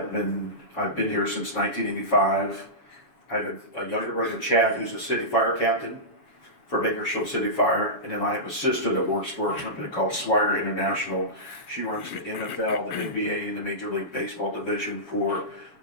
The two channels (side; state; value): right; late; 7.2 ms